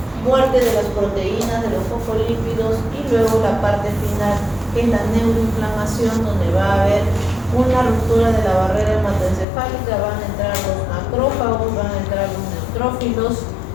muerte de las proteínas, de los fosfolípidos, y luego la parte final, que es la neuroinflamación, donde va a haber una ruptura de la barrera hematoencefálica, van a entrar los macrófagos, van a entrar los neutrófilos,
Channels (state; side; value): drops out; right; at 9.5 s